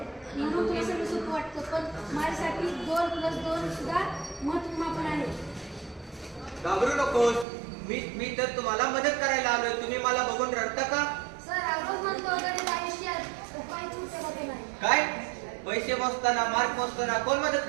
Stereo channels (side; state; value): left; drops out; at 7.5 s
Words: म्हणून तुला सगळं सोपं वाटतं, पण माझ्यासाठी 2+2 सुद्धा महत्त्वपूर्ण आहे. घाबरू नकोस, मी तर तुम्हाला मदत करायला आलोय. तुम्ही मला बघून रडता का? सर, रोज म्हणतो गणित आयुष्यात उपाय सुटे होते नाही. काय? पैसे मोजताना, मार्क मोजताना कोण मदत